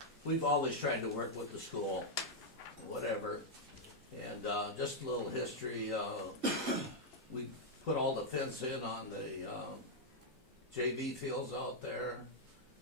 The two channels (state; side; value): normal; both; correlation -0.03